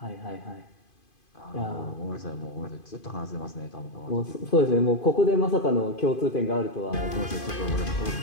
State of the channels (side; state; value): right; late; 2.5 ms